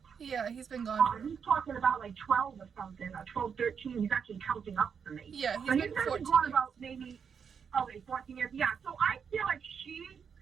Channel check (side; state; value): left; quieter; 6.8 dB